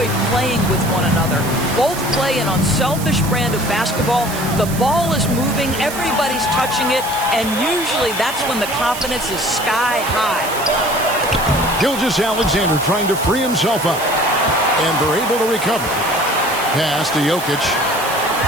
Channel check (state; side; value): noise; right; hiss, 10 dB below the sound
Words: playing with one another. Both play an unselfish brand of basketball. The ball is moving, everybody's touching it, and usually that's when the confidence is sky high. Gilgeous-Alexander trying to free himself up. And they're able to recover. Pass to Jokic.